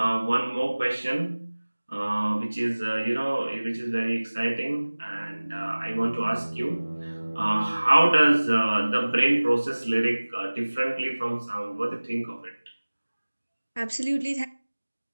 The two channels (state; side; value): inverted; both; correlation -1.00